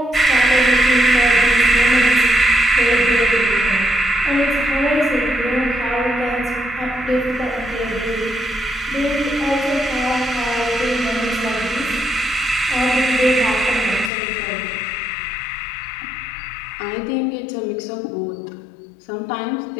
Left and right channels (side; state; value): right; drops out; at 14.1 s